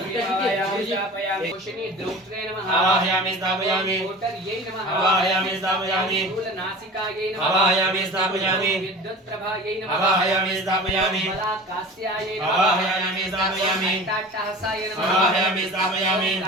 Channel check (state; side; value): normal; both; correlation 0.37